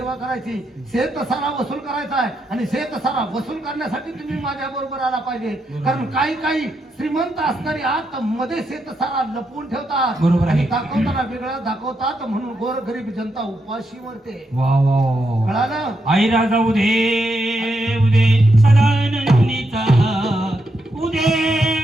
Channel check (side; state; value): both; normal; correlation 0.82